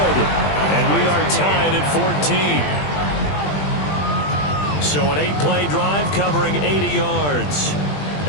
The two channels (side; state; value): right; late; 20 ms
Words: And we are tied at 14. So an 8-play drive covering 80 yards.